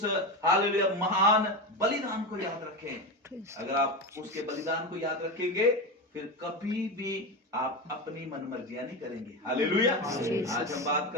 हालेलुया महान बलिदान को याद रखें। अगर आप उसके बलिदान को याद रखेंगे फिर कभी भी आप अपनी मनमर्जियां नहीं करेंगे। हालेलुया आज हम बात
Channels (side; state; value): both; normal; correlation 0.19